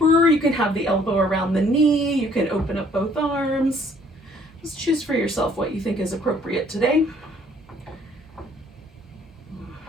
You can have the elbow around the knee. You can open up both arms. Just choose for yourself what you think is appropriate today.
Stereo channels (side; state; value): both; normal; correlation 0.61